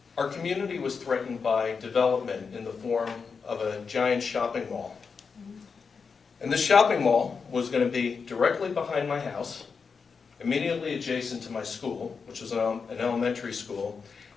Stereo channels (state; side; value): quieter; right; 5.4 dB